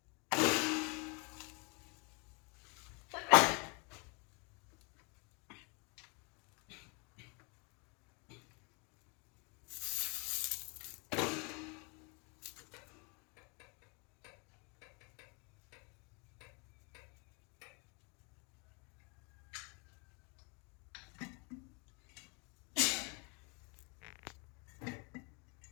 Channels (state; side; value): quieter; right; 32.8 dB